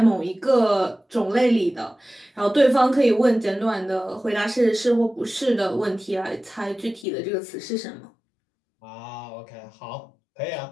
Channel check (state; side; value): drops out; right; at 7.1 s